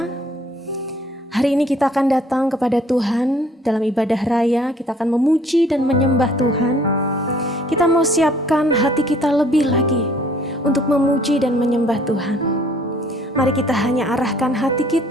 Hari ini kita akan datang kepada Tuhan dalam ibadah raya. Kita akan memuji dan menyembah Tuhan. Kita mau siapkan hati kita lebih lagi untuk memuji dan menyembah Tuhan. Mari kita hanya arahkan hati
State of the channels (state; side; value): normal; both; correlation 0.58